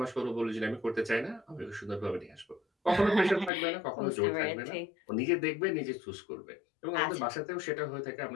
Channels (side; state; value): right; drops out; at 3.5 s